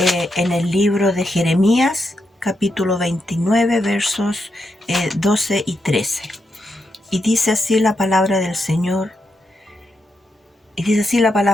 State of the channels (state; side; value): normal; both; correlation 0.84